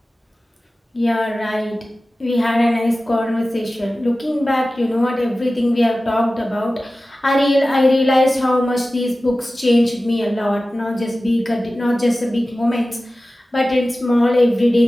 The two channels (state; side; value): normal; both; correlation 0.96